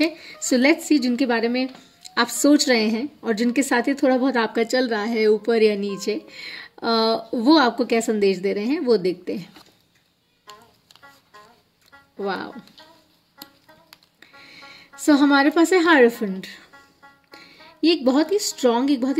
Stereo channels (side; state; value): both; identical; correlation 1.00